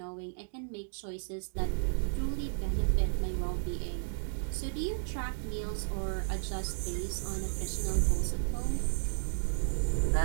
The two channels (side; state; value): left; silent; digital silence